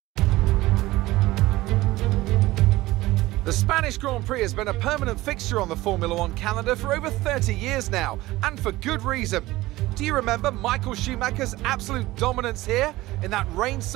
The Spanish Grand Prix has been a permanent fixture on the Formula One calendar for over 30 years now, and for good reason. Do you remember Michael Schumacher's absolute dominance here in that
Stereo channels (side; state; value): left; quieter; 18.2 dB